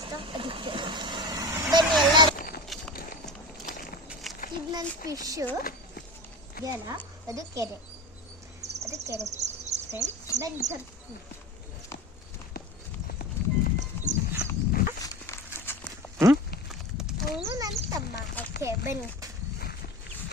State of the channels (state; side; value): normal; both; correlation 0.30